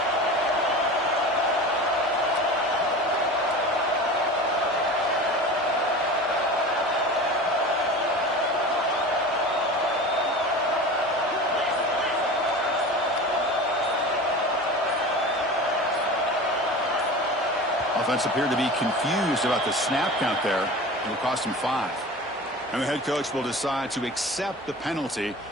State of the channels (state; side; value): normal; both; correlation 0.34